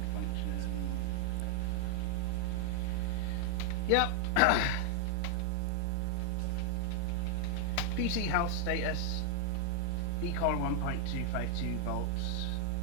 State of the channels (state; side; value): different; both; correlation 0.00